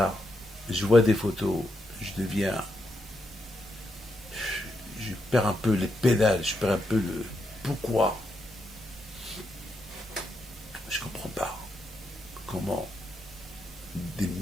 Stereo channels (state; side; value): normal; both; correlation 0.82